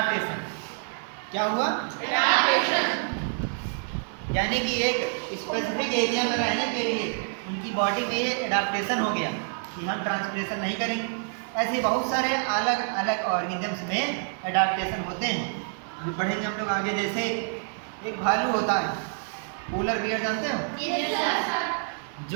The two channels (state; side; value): silent; left; 60 dB below the other